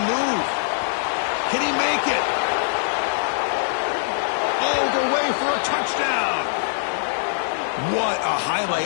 move. Can he make it? All the way for a touchdown. What a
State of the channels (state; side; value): silent; right; digital silence